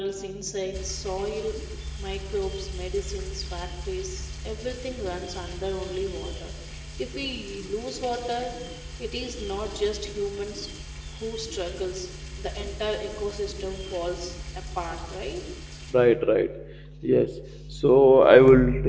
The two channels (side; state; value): both; identical; correlation 1.00